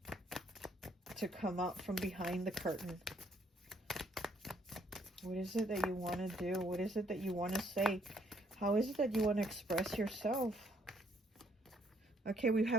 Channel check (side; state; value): both; normal; correlation 0.68